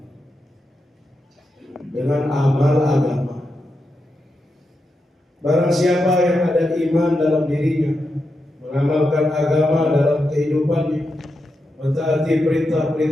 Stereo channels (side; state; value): both; normal; correlation 0.87